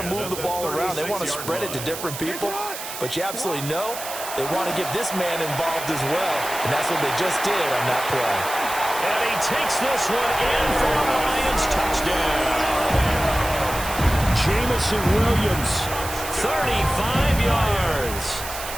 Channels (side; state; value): right; noise; hiss, 9 dB below the sound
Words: to move the ball around. They want to spread it to different people. But you absolutely know they want to get this man involved as well, and that's what they just did on that play. And he takes this one in for the Lions touchdown. Jamison Williams, 35 yards.